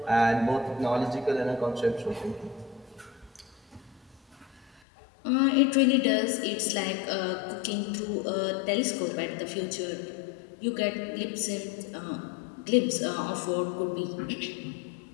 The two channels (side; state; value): right; drops out; at 4.8 s